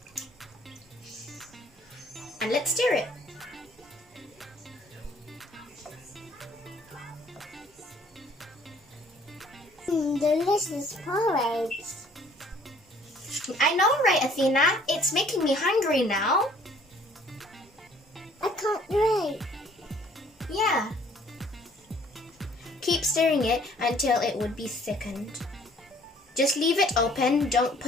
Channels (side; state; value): both; normal; correlation 0.58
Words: And let's stir it. Delicious porridge. I know, right, Athena? It's making me hungry now. I can't wait. Yeah. Keep stirring it until it would be thickened. Just leave it open, don't